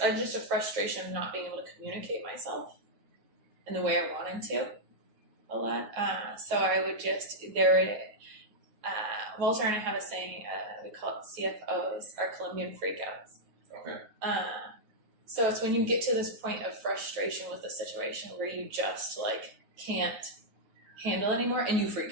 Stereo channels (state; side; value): late; left; 9.5 ms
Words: a frustration of not being able to communicate myself in the way I wanted to a lot. So I would just, Walter and I have a saying, we call it CFOs, our Colombian freakouts. Okay. So it's when you get to this point of frustration with the situation where you just like can't handle anymore and you freak